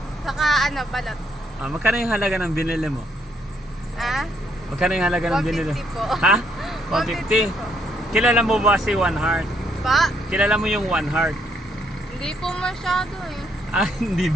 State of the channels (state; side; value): normal; both; correlation 0.72